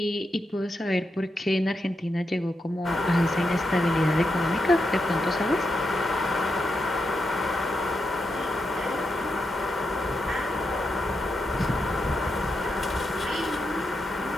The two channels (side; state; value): both; normal; correlation 0.85